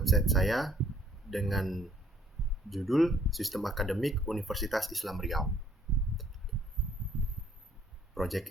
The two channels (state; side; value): normal; both; correlation 0.64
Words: saya dengan judul Sistem Akademik Universitas Islam Riau. Proyek